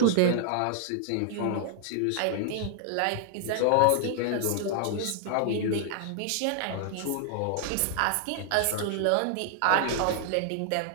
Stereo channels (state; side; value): different; both; correlation 0.00